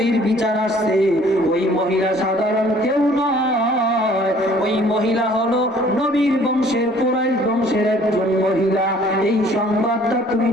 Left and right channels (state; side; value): normal; both; correlation 0.56